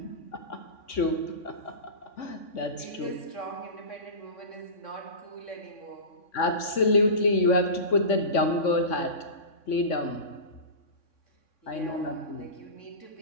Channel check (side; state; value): right; late; 3.6 ms